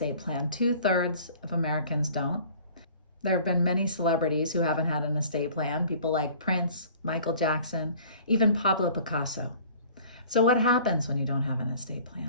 plan. 2/3 of Americans don't. There have been many celebrities who haven't had an estate plan, people like Prince, Michael Jackson, even Pablo Picasso. So what happens when you don't have an estate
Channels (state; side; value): inverted; both; correlation -0.49